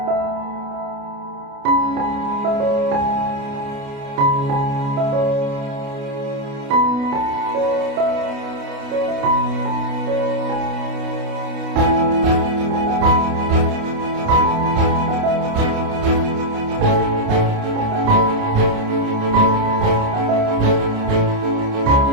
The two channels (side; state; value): left; late; 29 ms